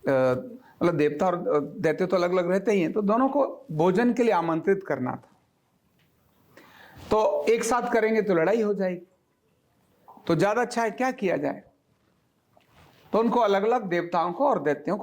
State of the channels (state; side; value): identical; both; correlation 1.00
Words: मतलब देवता और दैत्य तो अलग अलग रहते ही हैं, तो दोनों को भोजन के लिए आमंत्रित करना था। तो एक साथ करेंगे तो लड़ाई हो जाएगी, तो ज्यादा अच्छा है क्या किया जाए। तो उनको अलग अलग देवताओं को और दैत्यों